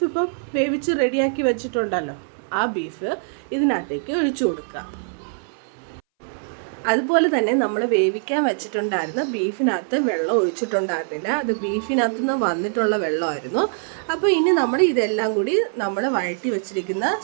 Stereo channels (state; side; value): silent; left; 61 dB below the other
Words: ഇപ്പം വേവിച്ച് റെഡിയാക്കി വെച്ചിട്ടുണ്ടല്ലോ, ആ ബീഫ് ഇതിനകത്തേക്ക് ഒഴിച്ചു കൊടുക്കുക. അതുപോലെ തന്നെ നമ്മൾ വേവിക്കാൻ വെച്ചിട്ടുണ്ടായിരുന്ന ബീഫിനകത്ത് വെള്ളം ഒഴിച്ചിട്ടുണ്ടായിരുന്നില്ല, അത് ബീഫിനകത്ത് നിന്ന് വന്നിട്ടുള്ള വെള്ളമായിരുന്നു. അപ്പോൾ ഇനി നമ്മൾ ഇതെല്ലാം കൂടി നമ്മൾ വഴറ്റി വെച്ചിരിക്കുന്ന